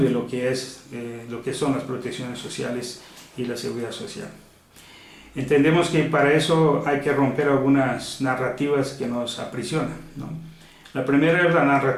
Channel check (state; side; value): identical; both; correlation 1.00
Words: de lo que son las protecciones sociales y la seguridad social. Entendemos que para eso hay que romper algunas narrativas que nos aprisionan, ¿no? La primera es la